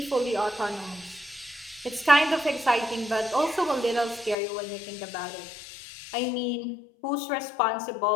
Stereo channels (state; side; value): drops out; right; at 4.4 s